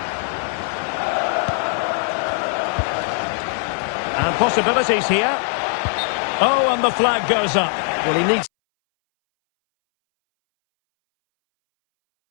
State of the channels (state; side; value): silent; right; 63 dB below the other